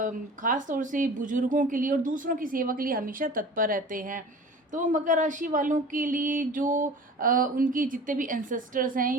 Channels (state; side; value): normal; both; correlation 0.41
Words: ख़ास तौर से बुजुर्गों के लिए और दूसरों की सेवा के लिए हमेशा तत्पर रहते हैं। तो मकर राशि वालों के लिए जो उनके जितने भी एंसेस्टर्स हैं